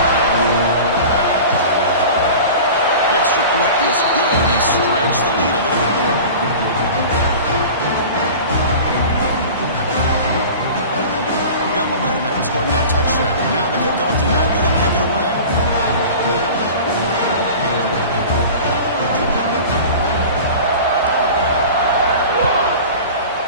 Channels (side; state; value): both; inverted; correlation -0.37